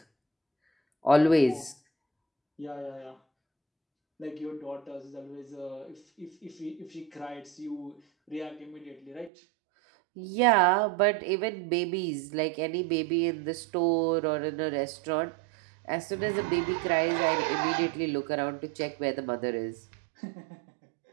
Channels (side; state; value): left; drops out; at 9.3 s